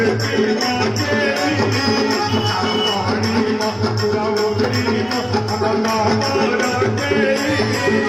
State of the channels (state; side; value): identical; both; correlation 1.00